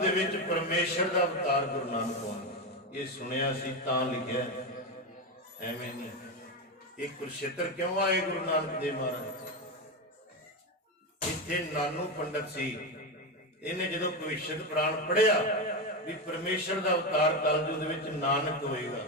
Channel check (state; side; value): normal; both; correlation 0.13